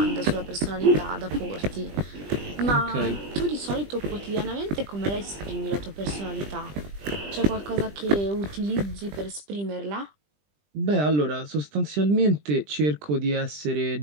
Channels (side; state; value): left; late; 20 ms